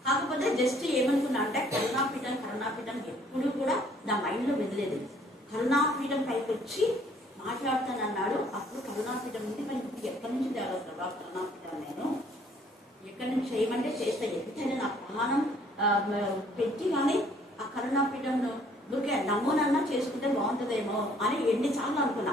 కాకపోతే జస్ట్ ఏమనుకున్నా అంటే కరుణాపీఠం ఎప్పుడు కూడా నా మైండ్లో వెదలేదు. కరుణాపీఠం పైకి వచ్చి మాట్లాడుతానన్నాడు. అప్పుడు కరుణాపీఠం ఉంది, మరి ఎక్కడి నుంచి తేవాలి ప్రభా కరుణాపీఠం, నేను ఎక్కడి నుంచి చేయమంటే చేస్తా. ఎంతైనా నా ప్రాణం పెట్టి కానీ ఆ కరుణాపీఠంలో ఊరికే నమూనన్నా చేసుకుంటే బాగుంటుందేమో అని ఎన్నిసార్లు అనుకున్నా.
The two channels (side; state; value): both; normal; correlation 0.61